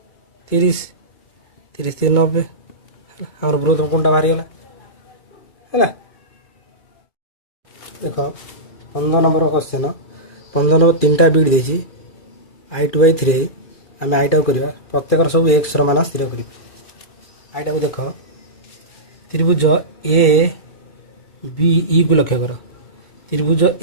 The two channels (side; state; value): right; late; 2.4 ms